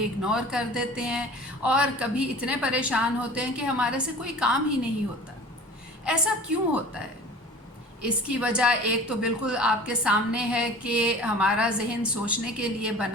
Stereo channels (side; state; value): both; normal; correlation 0.42